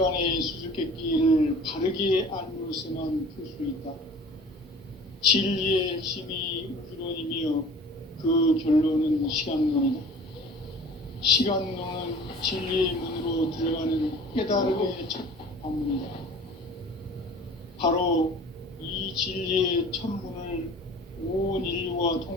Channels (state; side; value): normal; both; correlation 0.44